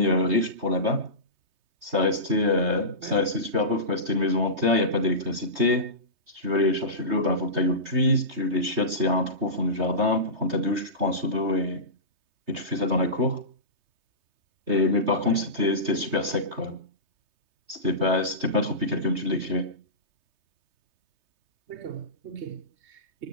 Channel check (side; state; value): left; late; 3.2 ms